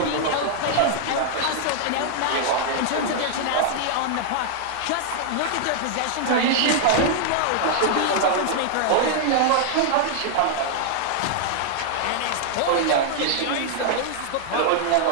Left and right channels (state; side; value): different; both; correlation 0.00